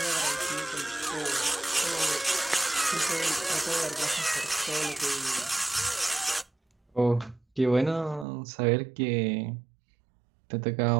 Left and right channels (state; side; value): drops out; left; at 8.2 s